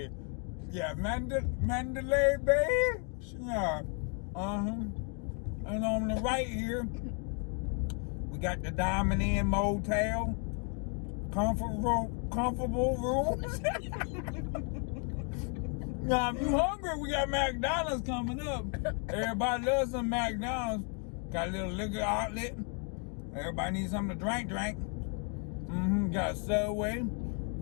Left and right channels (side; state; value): right; quieter; 39.4 dB